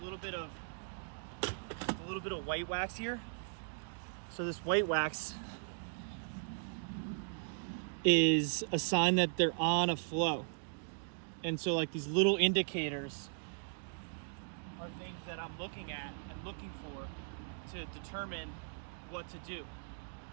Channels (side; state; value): left; silent; digital silence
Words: little bit of white wax here. So this white wax is a sign that they're on a flow. And so like these little indicators are things that I'm looking at and looking for to determine what to do.